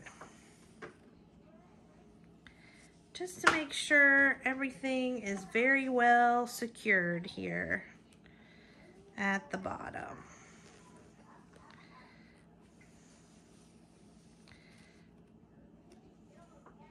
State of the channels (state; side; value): identical; both; correlation 1.00